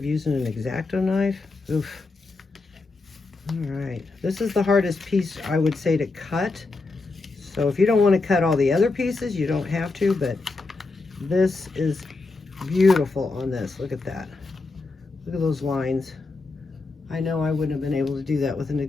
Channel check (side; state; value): right; quieter; 3.7 dB